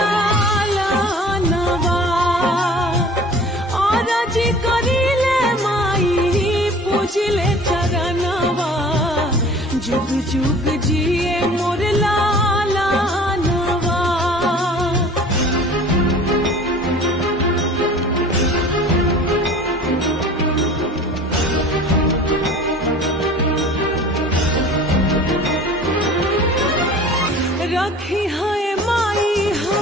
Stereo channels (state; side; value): normal; both; correlation 0.44